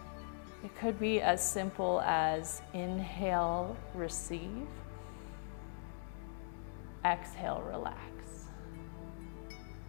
It could be as simple as inhale, receive, exhale, relax.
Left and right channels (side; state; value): right; silent; digital silence